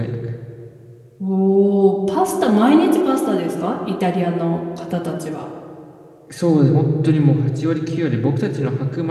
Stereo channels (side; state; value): both; identical; correlation 1.00